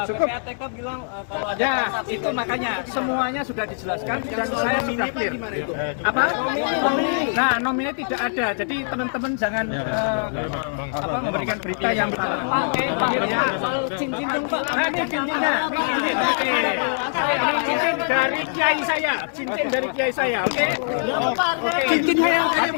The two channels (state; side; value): silent; right; 62 dB below the other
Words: cukup. PPATK bilang kalau ada Ya, transaksi itu makanya semuanya sudah dijelaskan dan saya sudah clear. Apa? Nah, nominnya tidak ada. Jadi teman-teman jangan memberikan berita yang salah. Oke, clear ya. cincin dong Pak. Nah, ini cincinnya. Ini cincin. Oke. Ini cincin dari kiai saya. Cincin dari kiai saya. Oke. Oke. Cincinnya yang